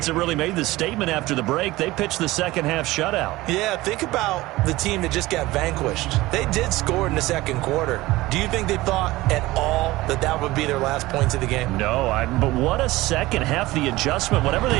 that really made the statement after the break. They pitched the second half shutout. Yeah, think about the team that just got vanquished. They did score in the 2nd quarter. Do you think they thought at all that that would be their last points of the game? No, but what a second half. The adjustment, whatever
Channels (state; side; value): quieter; left; 18.8 dB